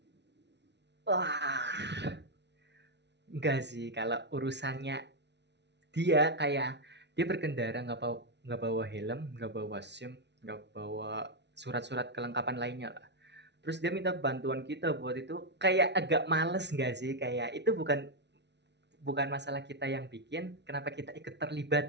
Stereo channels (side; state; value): left; late; 0.50 ms